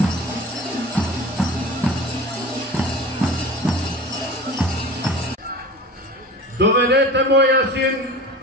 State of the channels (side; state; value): both; normal; correlation 0.36